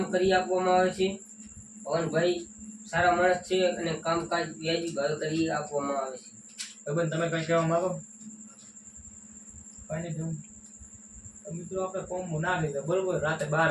કરી આપવામાં આવે છે. પવનભાઈ સારા માણસ છે અને કામકાજ વ્યાજી ભાવે કરી આપવામાં આવે છે. ભાઈ તમે કંઈ કહેવા માંગો? કંઈ નહીં કેવું. તો મિત્રો આપણે કોમ્બો નાખી દો બરોબર. રાતે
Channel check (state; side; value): identical; both; correlation 1.00